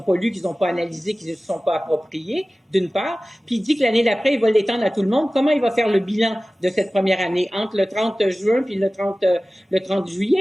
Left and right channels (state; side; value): normal; both; correlation 0.97